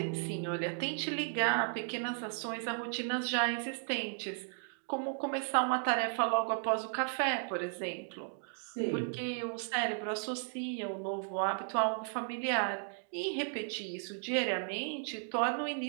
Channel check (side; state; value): left; silent; 54 dB below the other